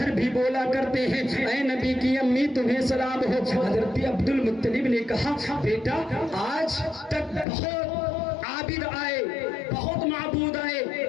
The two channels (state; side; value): drops out; right; at 7.5 s